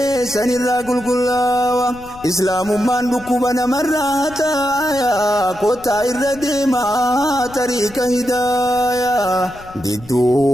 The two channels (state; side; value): noise; left; rumble, 20 dB below the sound